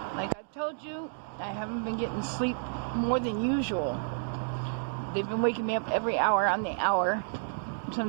like I've told you, I haven't been getting sleep more than usual. They've been waking me up every hour on the hour.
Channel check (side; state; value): left; silent; digital silence